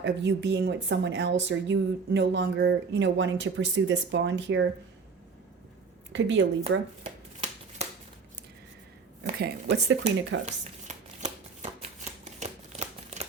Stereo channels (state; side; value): quieter; left; 5.0 dB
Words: of you being with someone else, or you no longer, wanting to pursue this bond here. Could be a Libra. Okay, what's the Queen of Cups?